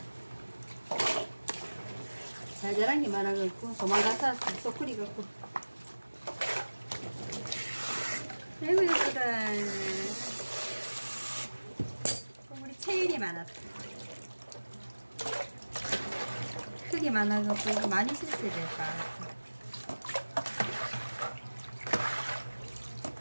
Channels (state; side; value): inverted; both; correlation -1.00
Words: 잘 자란 게 많아갖고 도망가서 쏙 끓이갖고. 아이고 예쁘다. 우리 체일이 많았다. 크기 많아갖고 많이 실수해야 될까.